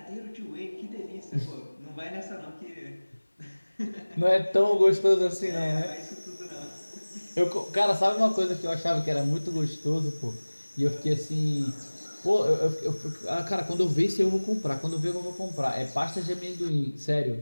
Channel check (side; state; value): both; inverted; correlation -1.00